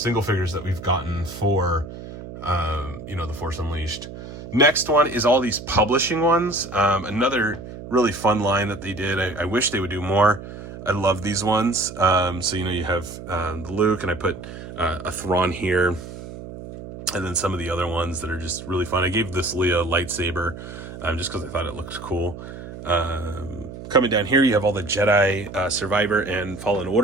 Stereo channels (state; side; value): noise; right; hum, 12 dB below the sound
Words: figures that we've gotten for the Force Unleashed. Next one is all these publishing ones. Another really fun line that they did. I wish they would do more. I love these ones. So you have the Luke, and I put a Thrawn here, and then some of the other ones that are just really fun. I gave this Leia lightsaber just because I thought it looked cool. Coming down here, you have all the Jedi Survivor and Fallen